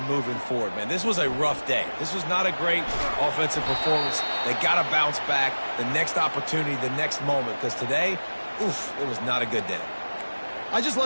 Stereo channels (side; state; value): both; inverted; correlation -1.00